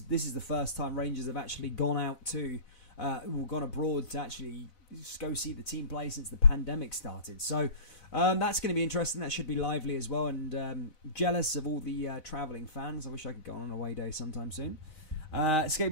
is the first time Rangers have actually gone out to gone abroad to actually go see the team play since the pandemic started. So that's going to be interesting. That should be lively as well. And jealous of all the travelling fans. I wish I could go on an away day sometime soon.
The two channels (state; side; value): late; right; 4.0 ms